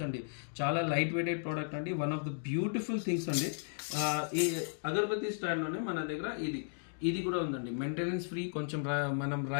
అండి. చాలా లైట్ వెయిటెడ్ ప్రోడక్ట్ అండి. One of the beautiful things అండి. ఈ అగరబత్తి స్టాండ్లోనే మన దగ్గర ఇది కూడా ఉందండి. Maintenance free. కొంచెం మనం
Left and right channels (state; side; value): silent; right; digital silence